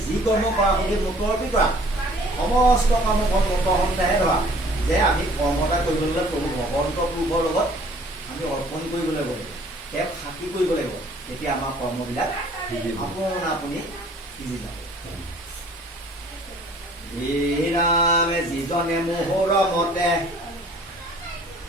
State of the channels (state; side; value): normal; both; correlation 0.54